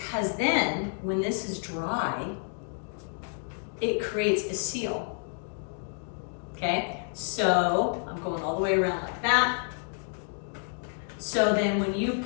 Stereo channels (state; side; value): silent; right; 58 dB below the other